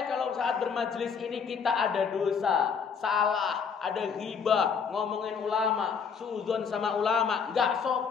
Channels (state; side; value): quieter; right; 6.2 dB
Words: kalau saat bermajlis ini kita ada dosa, salah, ada ghibah, ngomongin ulama, suudzon sama ulama, nggak